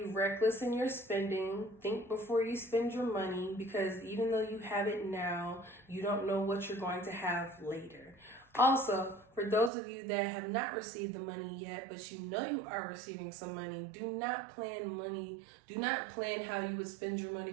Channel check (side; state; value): left; drops out; at 9.7 s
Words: reckless in your spending. Think before you spend your money, because even though you have it now, you don't know what you're going to have later. Also, for those of you that have not received the money yet, but you know you are receiving some money, do not plan money. Do not plan how you would spend your money